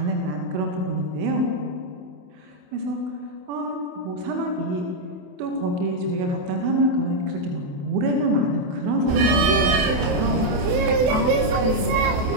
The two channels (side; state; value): left; late; 28 ms